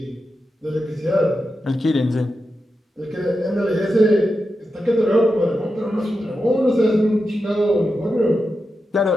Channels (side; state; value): both; normal; correlation 0.89